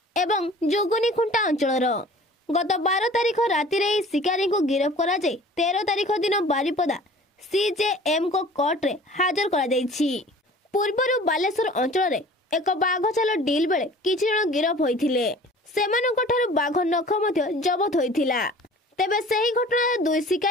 ଏବଂ ଯୋଗନୀ ଖୁଣ୍ଟା ଅଞ୍ଚଳର। ଗତ 12 ତାରିଖ ରାତିରେ ଏହି ଶିକାରୀଙ୍କୁ ଗିରଫ କରାଯାଇ 13 ତାରିଖ ଦିନ ବାରିପଦା CJM କୋର୍ଟରେ ହାଜର କରାଯାଇଛି। ପୂର୍ବରୁ ବାଲେଶ୍ୱର ଅଞ୍ଚଳରେ ଏକ ବାଘ ଛାଲ ଡିଲ୍ ବେଳେ କିଛି ଜଣ ଗିରଫ ହୋଇଥିଲେ। ସେମାନଙ୍କଠାରୁ ବାଘ ନଖ ମଧ୍ୟ ଜବତ ହୋଇଥିଲା। ତେବେ ସେହି ଘଟଣାରେ 2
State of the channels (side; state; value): both; normal; correlation 0.46